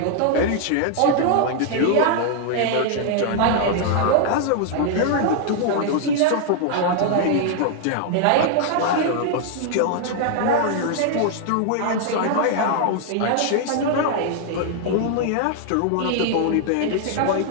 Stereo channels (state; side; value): different; both; correlation 0.00